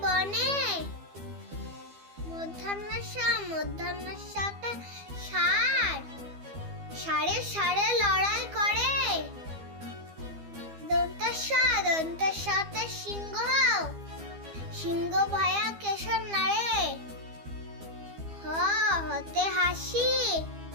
বনে। মধ্যাহ্নসা, মধ্যাহ্নসাতে ষাঁড়, ষাঁড়ে ষাঁড়ে লড়াই করে। দন্তাসা, দন্তাসাতে সিংহ, সিংহ ভয়া কেশর নাড়ে। হ হতে হাসি,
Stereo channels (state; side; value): late; left; 12 ms